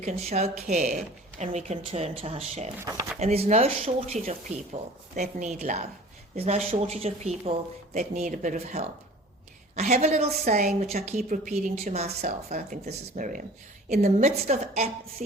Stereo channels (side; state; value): both; normal; correlation 0.45